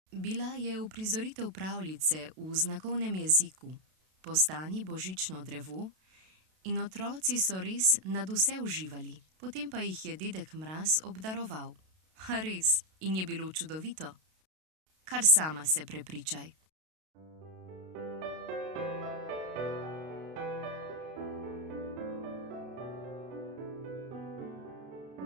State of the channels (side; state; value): left; late; 32 ms